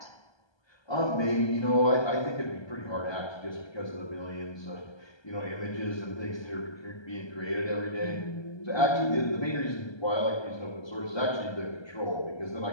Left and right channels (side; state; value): right; late; 1.3 ms